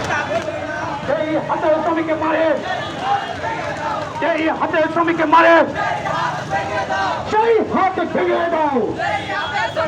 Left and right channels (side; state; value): both; identical; correlation 1.00